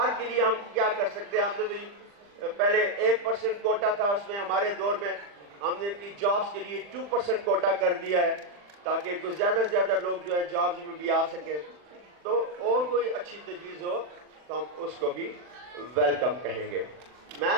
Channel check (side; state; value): left; late; 40 ms